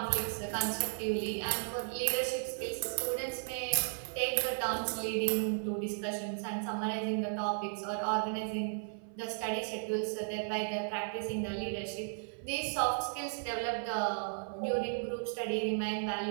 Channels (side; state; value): left; silent; 54 dB below the other